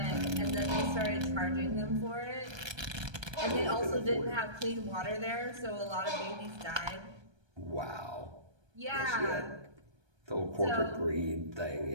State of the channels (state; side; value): late; left; 1.3 ms